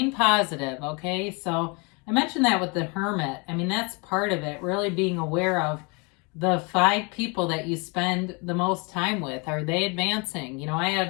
positive, okay? So I mentioned that with the Hermit. I mean, that's part of it, really being aware of the 5 people that you spend the most time with. Are they advancing?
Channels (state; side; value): quieter; right; 30.7 dB